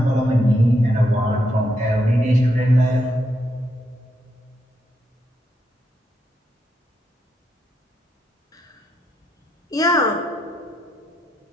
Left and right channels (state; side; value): normal; both; correlation 0.80